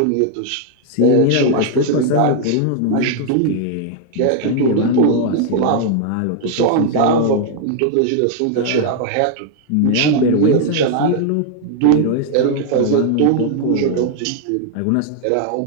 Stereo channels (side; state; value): both; different; correlation 0.00